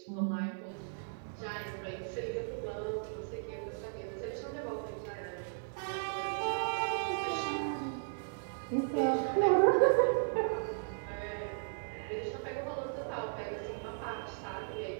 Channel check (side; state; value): left; silent; digital silence